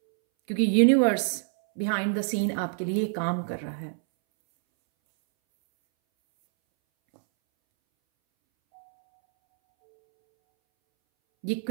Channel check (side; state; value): left; silent; 61 dB below the other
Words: क्योंकि यूनिवर्स बिहाइंड द सीन आपके लिए काम कर रहा है। ये